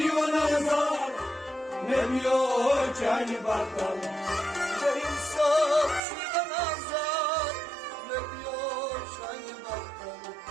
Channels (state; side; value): drops out; left; at 6.0 s